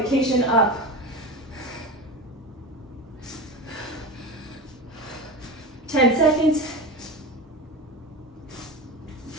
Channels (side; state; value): both; normal; correlation 0.26